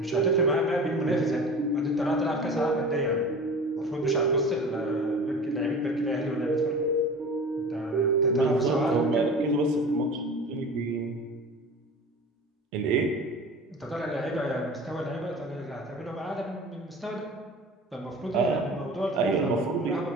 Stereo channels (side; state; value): both; normal; correlation 0.37